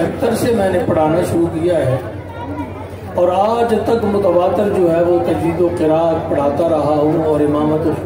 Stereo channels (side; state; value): both; identical; correlation 1.00